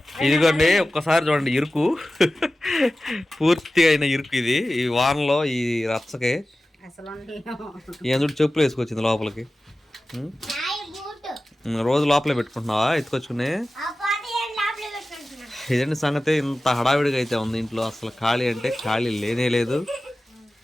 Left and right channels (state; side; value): normal; both; correlation 0.95